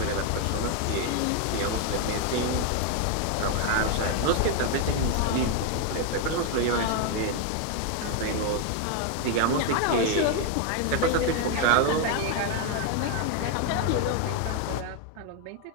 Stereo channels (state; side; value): different; both; correlation 0.01